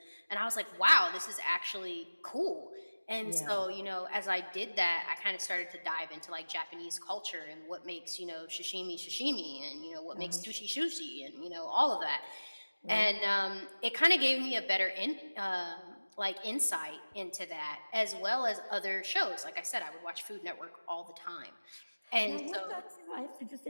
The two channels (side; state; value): both; inverted; correlation -1.00